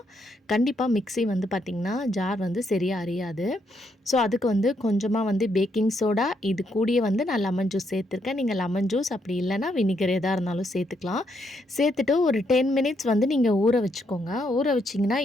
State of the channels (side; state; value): both; normal; correlation 0.76